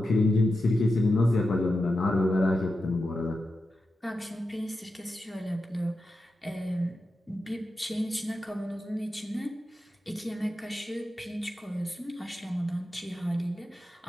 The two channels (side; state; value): both; normal; correlation 0.90